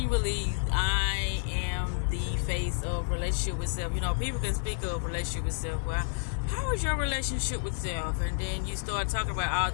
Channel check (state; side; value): silent; right; digital silence